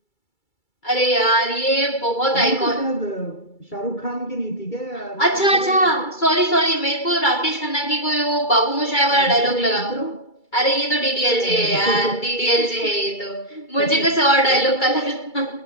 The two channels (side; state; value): right; late; 2.3 ms